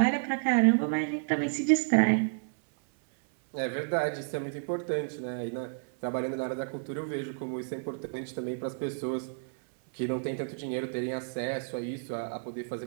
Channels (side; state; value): left; silent; 57 dB below the other